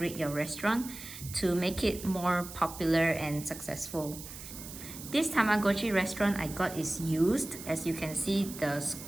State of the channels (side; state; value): right; noise; hiss, 12 dB below the sound